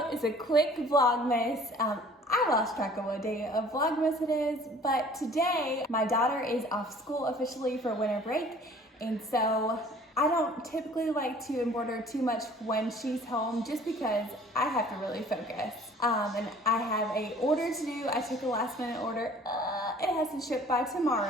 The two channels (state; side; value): normal; both; correlation 0.51